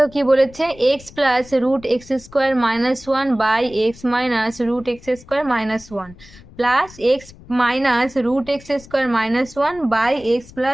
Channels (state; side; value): noise; left; rumble, 21 dB below the sound